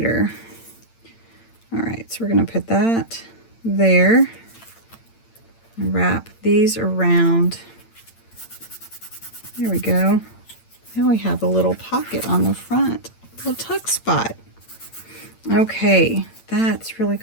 All right, so we're going to put that there and wrap these around. There we go. Now we have a little pocket on the front, a little tuck spot. Okay, that's really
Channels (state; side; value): late; right; 8.8 ms